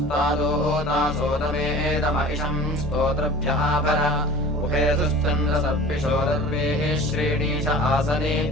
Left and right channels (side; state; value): both; normal; correlation 0.42